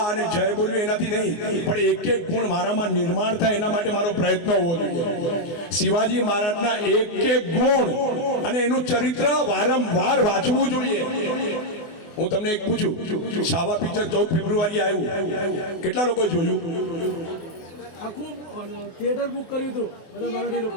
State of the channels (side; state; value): right; late; 24 ms